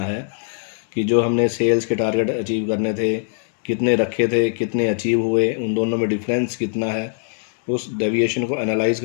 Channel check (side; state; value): right; silent; 65 dB below the other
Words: है, कि जो हमने सेल्स के टारगेट अचीव करने थे कितने रखे थे, कितने अचीव हुए, उन दोनों में डिफरेंस कितना है, उस डेविएशन को एनालाइज